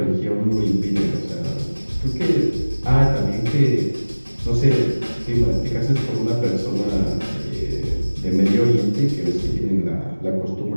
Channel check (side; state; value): both; inverted; correlation -1.00